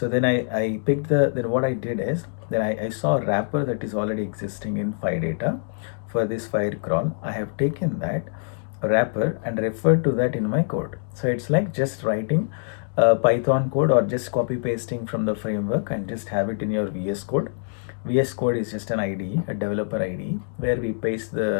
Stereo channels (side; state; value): right; silent; digital silence